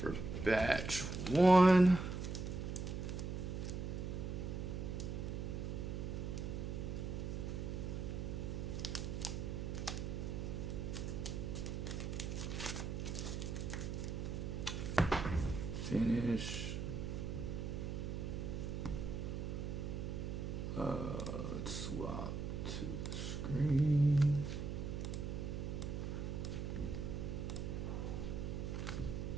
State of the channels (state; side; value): noise; right; hum, 3 dB below the sound